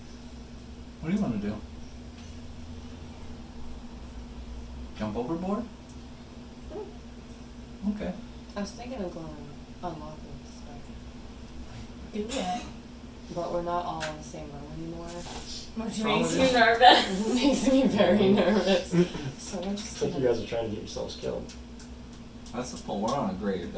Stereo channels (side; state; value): both; identical; correlation 1.00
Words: What do you wanna do? Jump overboard? Okay. I was thinking of going unlocking the spider. Do it. But we're not all in the same room anymore. Which wrong makes with you nervous. It makes me very nervous. So we're It's just like you gonna... guys are trying to get yourselves killed. That's the point. We're on a great